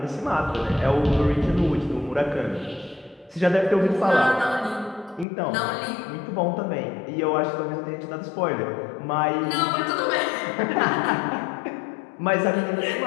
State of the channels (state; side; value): drops out; right; at 5.2 s